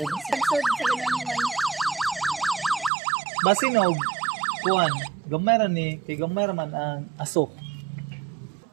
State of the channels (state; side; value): drops out; left; at 2.9 s